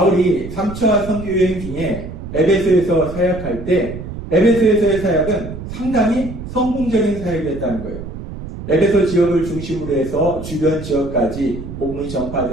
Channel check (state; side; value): noise; right; rumble, 10 dB below the sound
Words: 3차 선교여행 중에 에베소에서 사역할 때 에베소에서의 사역은 상당히 성공적인 사역이었다는 거예요. 에베소 지역을 중심으로 해서 주변 지역까지 복음이